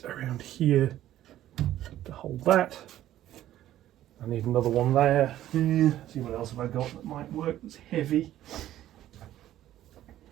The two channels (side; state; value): left; quieter; 13.1 dB